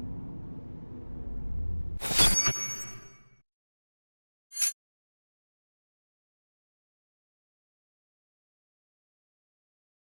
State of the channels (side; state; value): both; inverted; correlation -1.00